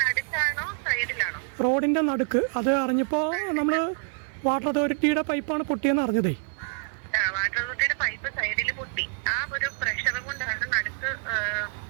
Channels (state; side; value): silent; left; 60 dB below the other